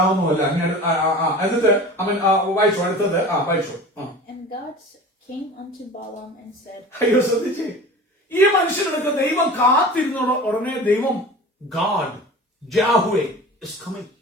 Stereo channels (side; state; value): both; normal; correlation 0.37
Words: അല്ല. എന്നിട്ട് അവൻ വായിച്ചു. അടുത്തത് വായിച്ചു. Came unto Balaam and said, അയ്യോ, ശ്രദ്ധിച്ചേ, ഈ മനുഷ്യനെടുത്ത് ദൈവം കാത്തിരുന്ന ഉടനെ ദൈവം ഗാഡ് ജാഹ്വേ is coming.